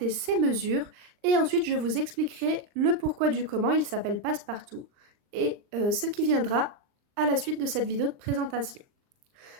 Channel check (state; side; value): late; left; 39 ms